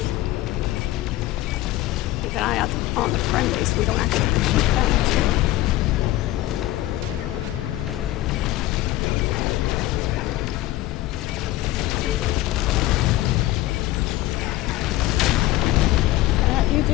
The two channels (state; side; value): quieter; right; 16.1 dB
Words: Keep an eye out on the friendlies so we don't actually shoot them. You do.